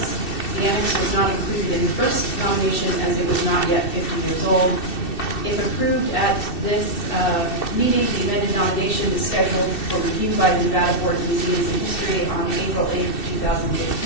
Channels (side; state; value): right; late; 2.7 ms